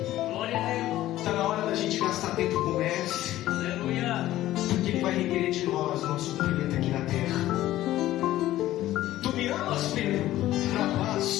Está na hora da gente gastar tempo com o Mestre. Porque Ele vai requerer de nós o nosso cumprimento aqui na terra. Tu me amas, Pedro?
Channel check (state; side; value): quieter; right; 14.7 dB